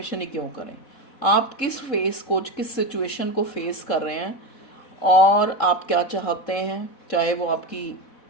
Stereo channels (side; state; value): right; late; 3.7 ms